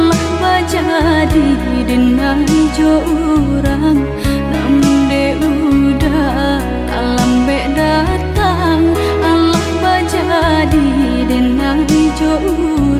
bajadi denai jo urang. Namun de udah tak lambe datang, Allah bajadi denai jo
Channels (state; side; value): identical; both; correlation 1.00